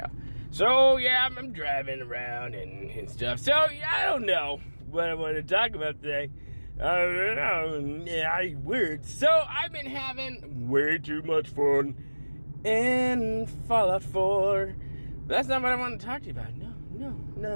So, yeah, I'm driving around and stuff. So, yeah, I don't know what I want to talk about today. Weird. So, I've been having way too much fun in Fallout 4. But that's not what I want to talk to you about.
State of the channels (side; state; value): both; inverted; correlation -1.00